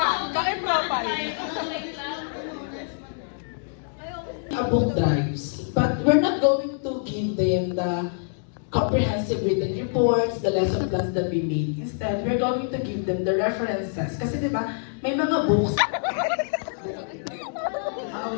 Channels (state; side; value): silent; right; digital silence